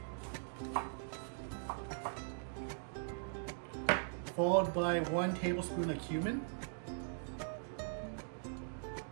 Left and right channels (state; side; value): silent; left; digital silence